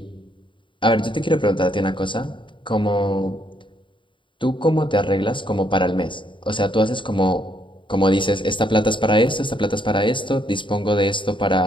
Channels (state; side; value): late; right; 0.24 ms